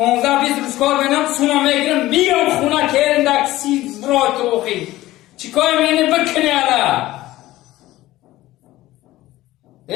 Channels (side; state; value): right; quieter; 16.5 dB